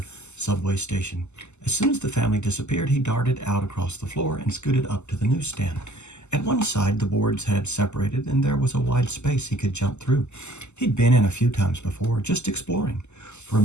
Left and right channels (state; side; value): late; right; 0.83 ms